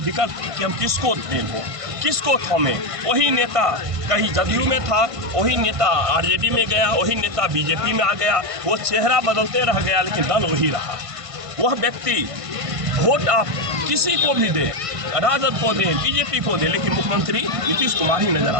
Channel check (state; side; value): late; left; 1.5 ms